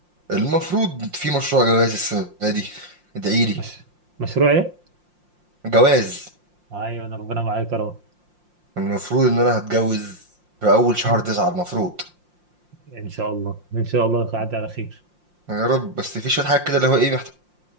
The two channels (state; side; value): late; left; 5.7 ms